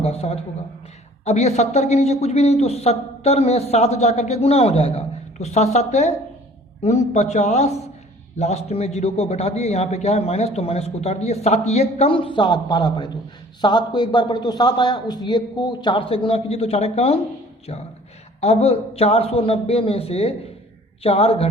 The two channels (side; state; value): both; normal; correlation 0.51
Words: 7 होगा। अब ये 70 के नीचे कुछ भी नहीं, तो 70 में 7 जा करके गुना हो जाएगा। तो 7 7 49, लास्ट में 0 को बैठा दिए। यहाँ पे क्या है माइनस, तो माइनस को उतार दिए। 7 ये कम 7 12 पड़े, तो 7 को एक बार पढ़े तो 7 आया। उस 1 को 4 से गुना कीजिए तो 4 कम 4। अब 490 में से 4